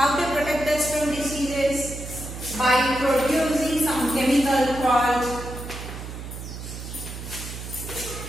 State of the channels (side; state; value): right; noise; hum, 9 dB below the sound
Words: they protect us from diseases? By producing some chemical called